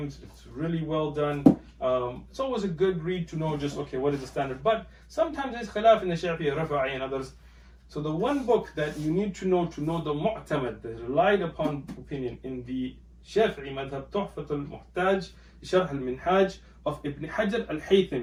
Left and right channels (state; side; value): identical; both; correlation 1.00